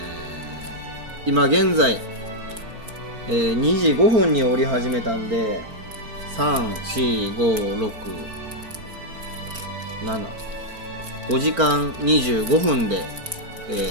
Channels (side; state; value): left; late; 4.4 ms